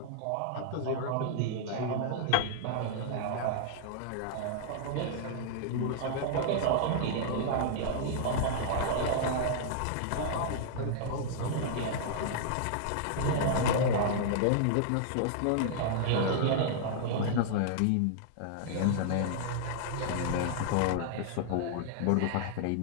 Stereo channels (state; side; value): different; both; correlation -0.01